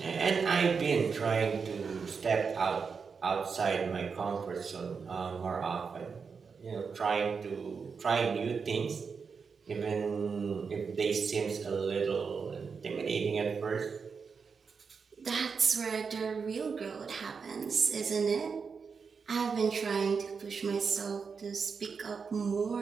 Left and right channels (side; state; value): left; quieter; 5.5 dB